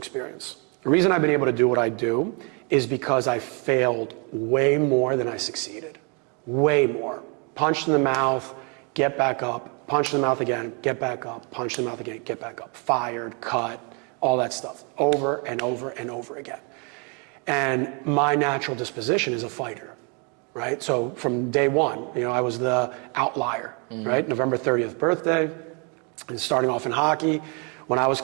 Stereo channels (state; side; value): quieter; left; 34.8 dB